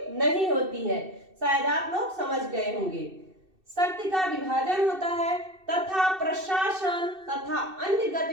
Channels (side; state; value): left; late; 2.7 ms